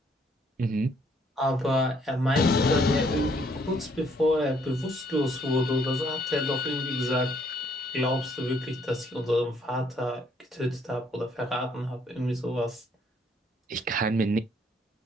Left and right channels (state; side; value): normal; both; correlation 0.67